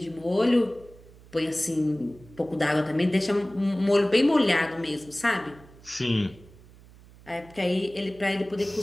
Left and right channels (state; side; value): noise; right; hum, 23 dB below the sound